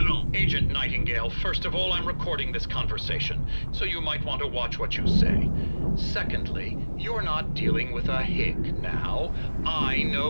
Agent Nightingale, first of all, I'm recording this conversation, so you might want to watch what you say. Secondly, you're not dealing with a hick now. I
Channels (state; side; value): inverted; both; correlation -1.00